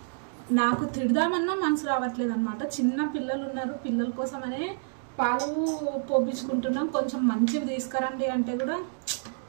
నాకు తిడదామన్నా మనసు రావట్లేదు అనమాట. చిన్న పిల్లలు ఉన్నారు, పిల్లల కోసమనే పాలు పోపించుకుంటున్నాం. కొంచెం మంచివి తీసుకురండి అంటే కూడా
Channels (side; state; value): left; silent; digital silence